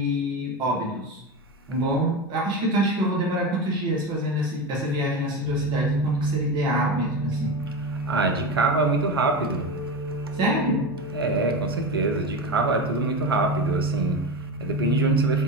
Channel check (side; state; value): both; normal; correlation 0.21